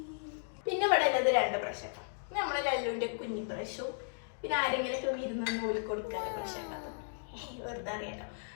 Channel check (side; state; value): right; silent; digital silence